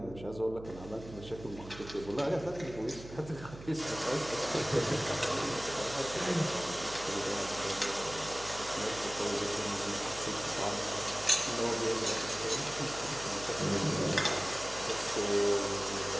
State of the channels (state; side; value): noise; right; hum, 15 dB below the sound